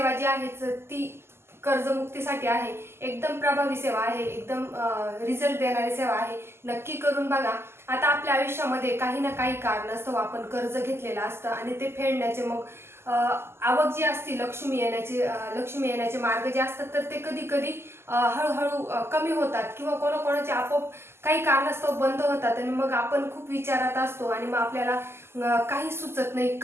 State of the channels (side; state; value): left; late; 0.12 ms